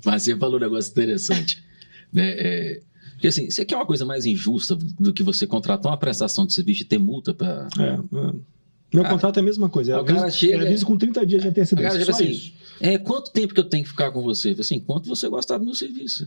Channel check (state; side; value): inverted; both; correlation -1.00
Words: Mas você falou um negócio interessante. Né? Porque assim, você quer uma coisa mais injusta do que você contratar uma prestação de serviço e ter multa para... Meu contrato é a mesma coisa. O cara chega... aviso com 30 dias de antecedência. O cara chega assim, quanto tempo que eu tenho que ficar com você? Assim, enquanto você gostar do meu